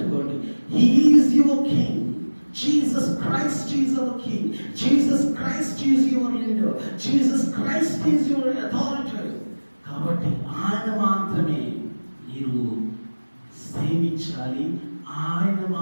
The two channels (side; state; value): both; inverted; correlation -1.00